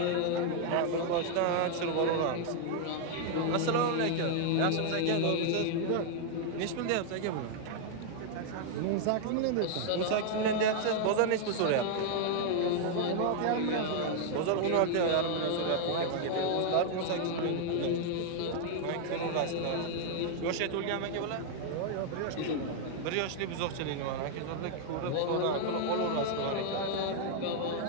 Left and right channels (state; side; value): different; both; correlation 0.00